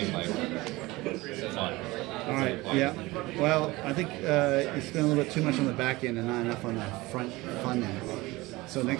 like fun. All right. Yeah. Well, I think it's been a little bit too much on the back end and not enough on the front end. So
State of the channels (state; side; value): quieter; left; 20.9 dB